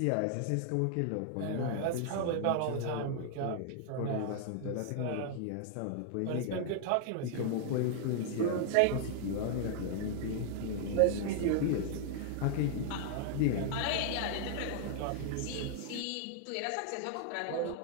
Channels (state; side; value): different; both; correlation 0.00